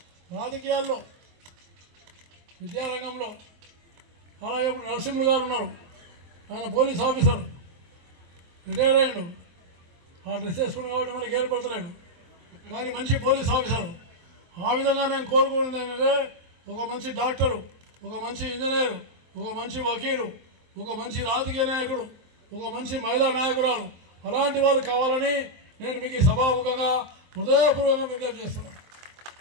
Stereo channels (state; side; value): late; left; 23 ms